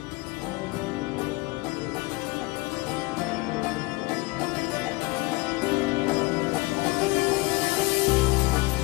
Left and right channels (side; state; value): right; quieter; 22.8 dB